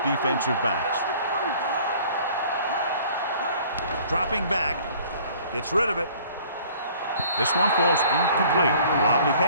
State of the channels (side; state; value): both; inverted; correlation -0.53